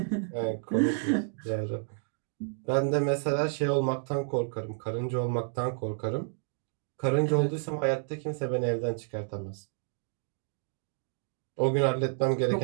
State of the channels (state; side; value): silent; left; 58 dB below the other